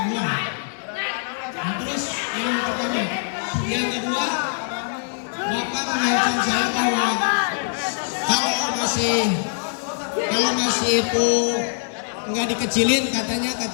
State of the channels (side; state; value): right; silent; 63 dB below the other